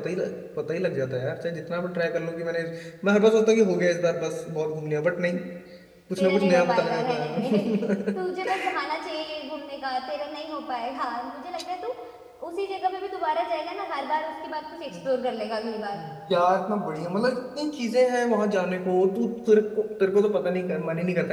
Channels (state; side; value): identical; both; correlation 1.00